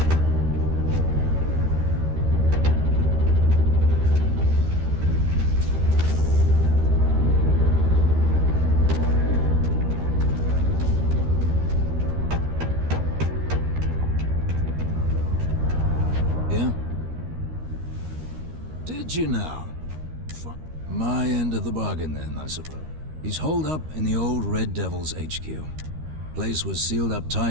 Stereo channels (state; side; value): late; left; 13 ms